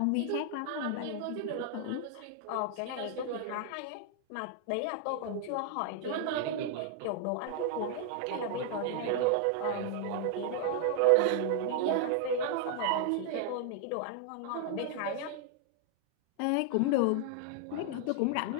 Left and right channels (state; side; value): different; both; correlation 0.00